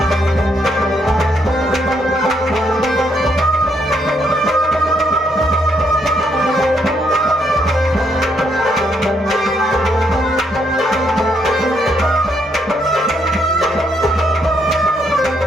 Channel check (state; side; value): normal; both; correlation 0.74